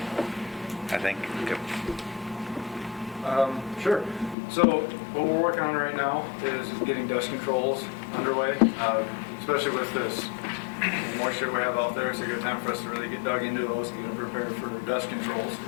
I think. Sure. So what we're working on right now is getting dust controls underway, especially with this moisture we have out there. It's a good time for us to really get dug into those and get them prepared for dust controls.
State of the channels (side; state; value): right; drops out; at 4.4 s